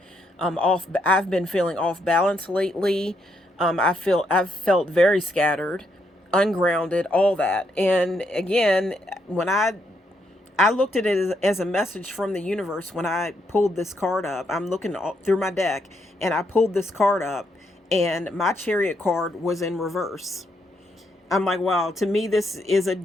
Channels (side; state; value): both; normal; correlation 0.77